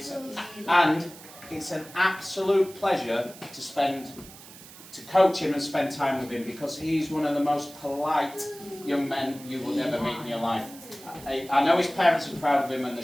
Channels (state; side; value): noise; right; hiss, 18 dB below the sound